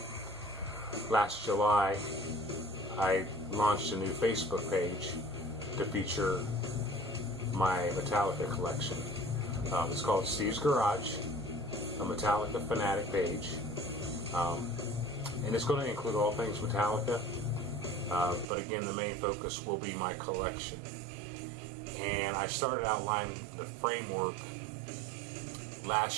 Last July, I launched a new Facebook page to feature my Metallica collection. It's called Steve's Garage, a Metallica fanatic page. And it's going to include all things Metallica. But again, the main focus will be my collection. And I started outlining the framework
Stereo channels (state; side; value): drops out; left; at 18.4 s